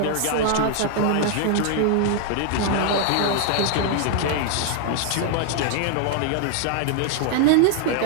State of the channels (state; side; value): different; both; correlation 0.00